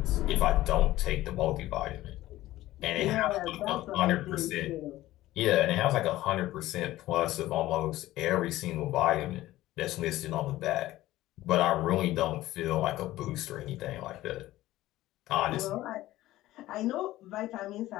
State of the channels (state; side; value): quieter; right; 15.9 dB